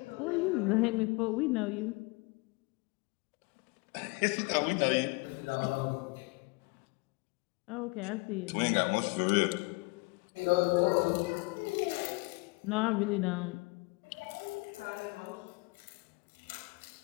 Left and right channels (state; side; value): quieter; right; 27.4 dB